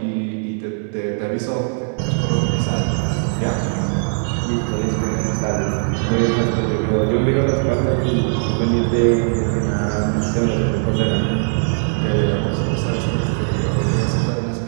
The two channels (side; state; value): left; silent; 60 dB below the other